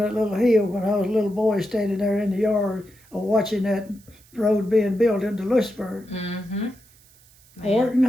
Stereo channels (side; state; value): right; noise; hiss, 28 dB below the sound